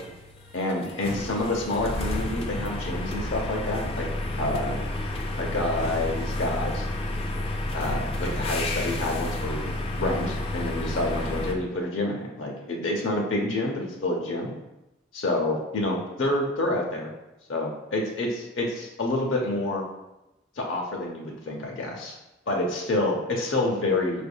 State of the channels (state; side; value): normal; both; correlation 0.33